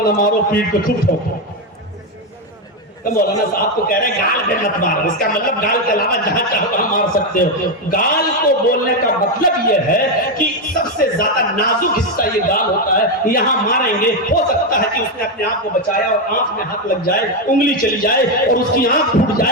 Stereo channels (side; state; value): both; normal; correlation 0.07